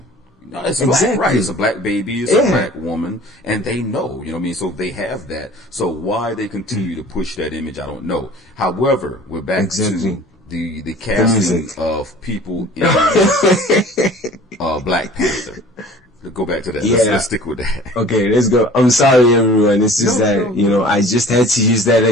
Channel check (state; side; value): normal; both; correlation 0.46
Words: No, it's black, right? It's a black baby, it's a black woman, and they know, you know what I mean? So they have that. So why they continue to push that image, I don't know. However, we're back to the casting of people in Black Panther. Let's go back to that. Let's stick with that. Okay, let's go. I'm sorry, everyone. It's just you know, I just had to use that